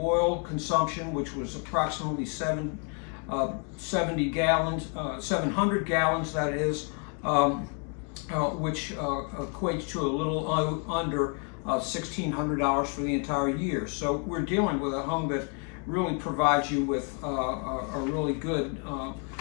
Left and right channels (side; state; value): right; quieter; 39.5 dB